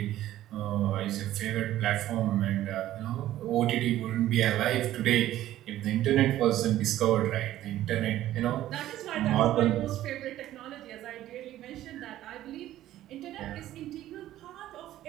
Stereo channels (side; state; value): left; quieter; 13.6 dB